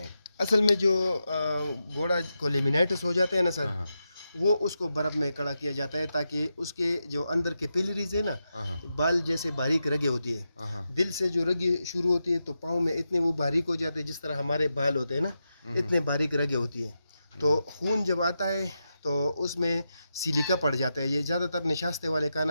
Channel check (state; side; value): inverted; both; correlation -0.87